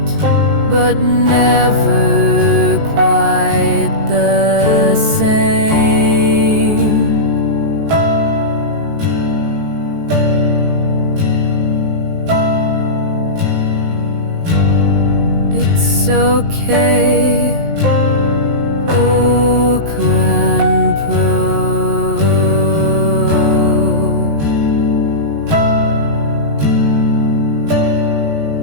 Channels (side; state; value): left; late; 19 ms